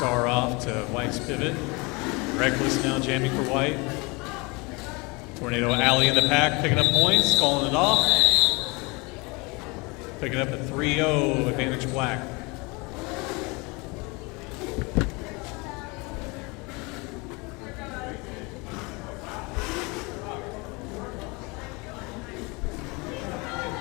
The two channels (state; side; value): quieter; right; 27.1 dB